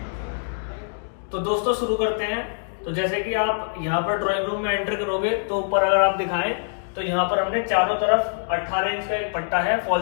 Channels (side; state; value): right; silent; digital silence